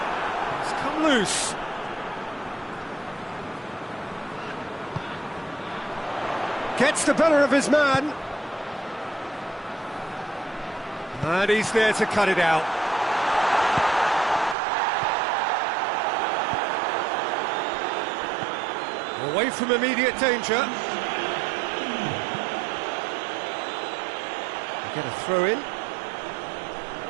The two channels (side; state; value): left; drops out; at 14.6 s